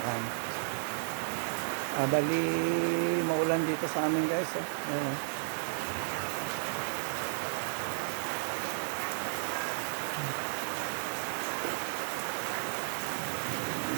Bali, maulan dito sa amin guys. Ayan, oh.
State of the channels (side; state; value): left; silent; 56 dB below the other